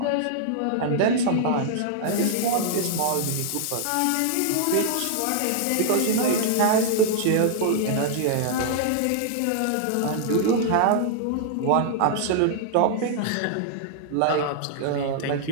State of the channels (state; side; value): different; both; correlation -0.01